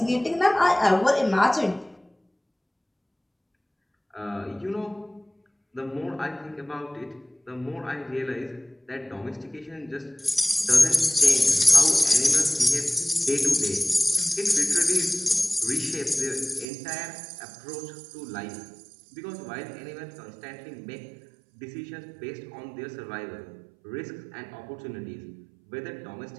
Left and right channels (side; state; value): left; drops out; at 16.7 s